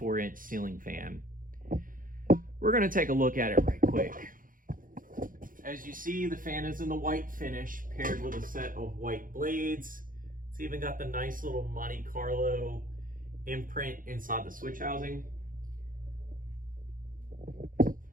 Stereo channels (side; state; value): left; late; 0.40 ms